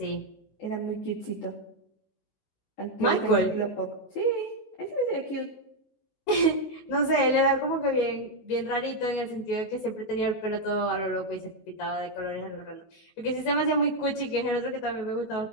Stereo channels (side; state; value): right; late; 19 ms